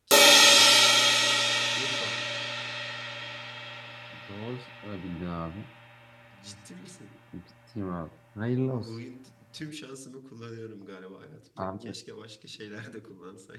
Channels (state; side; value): identical; both; correlation 1.00